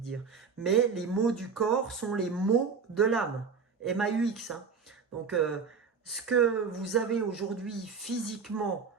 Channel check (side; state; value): left; quieter; 5.6 dB